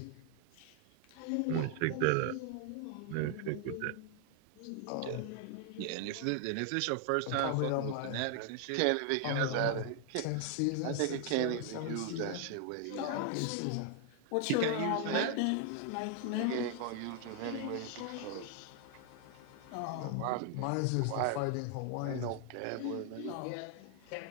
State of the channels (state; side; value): different; both; correlation 0.00